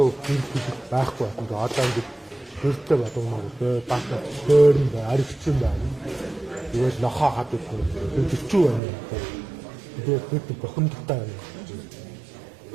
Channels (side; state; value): left; drops out; at 8.8 s